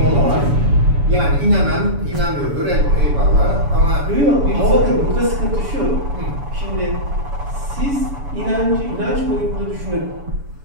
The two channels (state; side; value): late; left; 7.1 ms